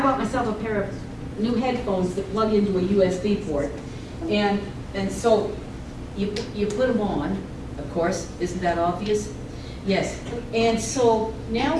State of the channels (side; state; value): both; identical; correlation 1.00